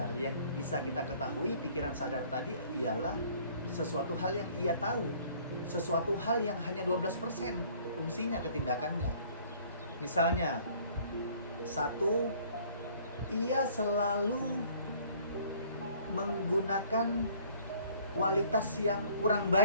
Yang bisa kita ketahui, pikiran sadar tadi ialah sesuatu hal yang ia tahu, sesuatu hal yang hanya 12% fungsinya ketindakannya. Misalnya, satu, ia selalu menggunakan kualitas yang kurang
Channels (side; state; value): both; inverted; correlation -0.56